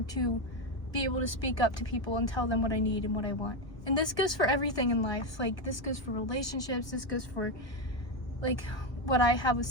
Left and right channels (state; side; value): late; right; 1.1 ms